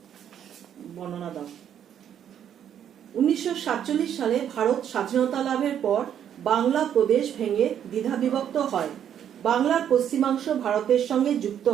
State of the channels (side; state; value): left; quieter; 9.5 dB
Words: বর্ণনা দাও। 1947 সালে ভারত স্বাধীনতা লাভের পর বাংলা প্রদেশ ভেঙে দ্বিধা বিভক্ত হয়। বাংলার পশ্চিমাংশ ভারতের সঙ্গে যুক্ত